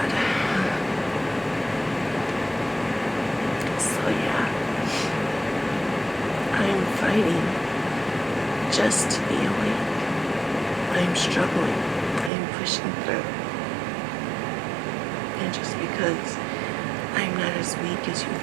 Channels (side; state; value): left; drops out; at 12.3 s